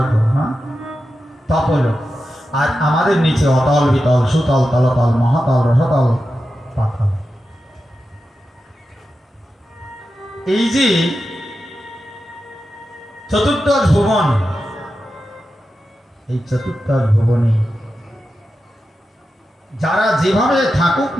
হ্যাঁ, তপলোক। আর আমাদের নিচে অতল, বিতল, সুতল, তলতল, মহাতল, রসতল, পাতাল। এই যে চতুর্দশ ভুবন, এই চতুর্দশ ভুবনে যারা যেভাবে থাকুক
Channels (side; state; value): both; normal; correlation 0.90